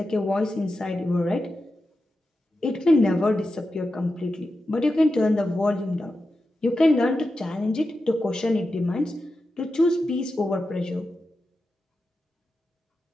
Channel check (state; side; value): normal; both; correlation 0.90